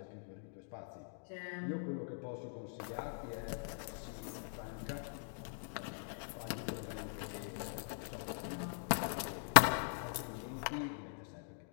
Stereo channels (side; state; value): right; silent; digital silence